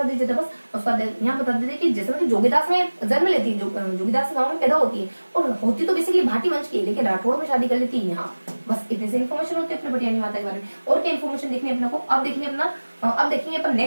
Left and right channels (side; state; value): both; inverted; correlation -1.00